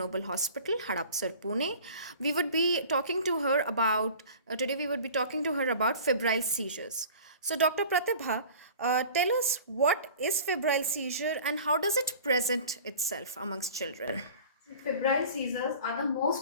Hospital, Hadapsar, Pune. We would be talking to her about today. We would be talking to her about febrile seizures. So, Dr. Pratibha, tell us what is febrile seizure and how does it present itself amongst children? Febrile seizures are the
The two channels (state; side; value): inverted; both; correlation -0.43